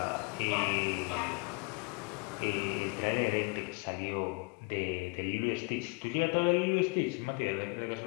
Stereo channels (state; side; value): quieter; right; 31.2 dB